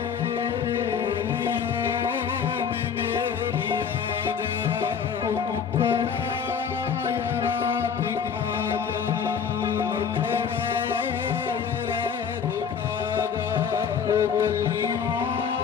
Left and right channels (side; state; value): right; quieter; 6.9 dB